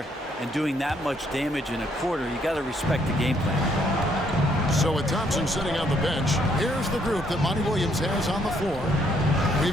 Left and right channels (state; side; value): normal; both; correlation 0.70